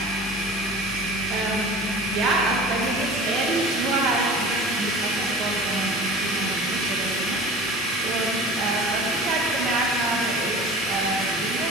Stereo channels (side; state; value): both; normal; correlation 0.39